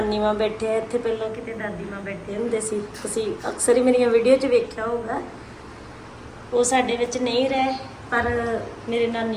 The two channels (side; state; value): both; identical; correlation 1.00